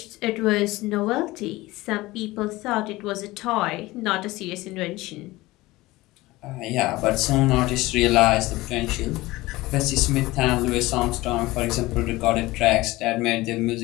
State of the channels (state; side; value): quieter; right; 19.5 dB